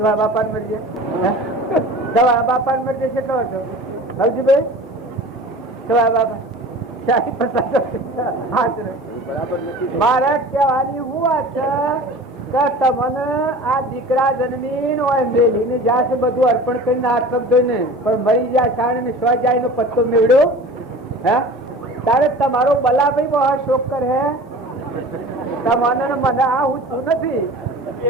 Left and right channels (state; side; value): normal; both; correlation 0.39